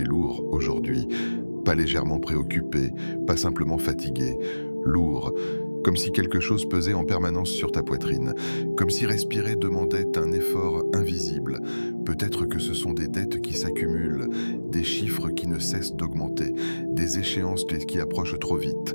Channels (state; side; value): inverted; both; correlation -1.00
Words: lourd aujourd'hui, pas légèrement préoccupé, pas simplement fatigué, lourd, comme si quelque chose pesait en permanence sur ta poitrine, comme si respirer demandait un effort invisible. Peut-être que ce sont des dettes qui s'accumulent, des chiffres qui ne cessent d'augmenter, des échéances qui approchent trop vite,